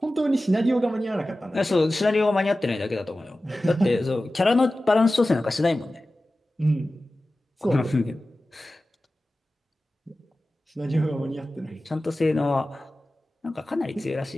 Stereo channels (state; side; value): normal; both; correlation 0.95